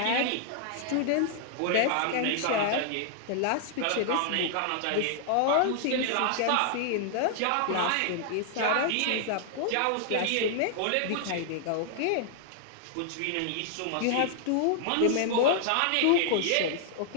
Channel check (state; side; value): different; both; correlation -0.01